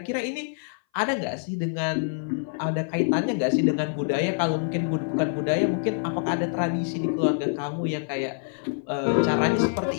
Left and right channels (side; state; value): right; silent; 58 dB below the other